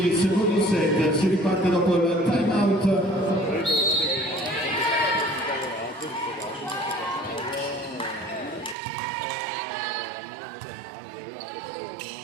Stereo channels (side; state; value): left; drops out; at 8.8 s